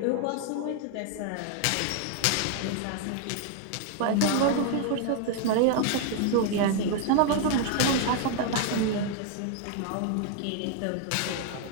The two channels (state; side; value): different; both; correlation 0.00